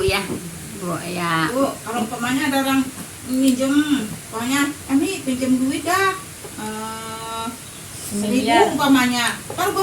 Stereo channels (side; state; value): both; identical; correlation 1.00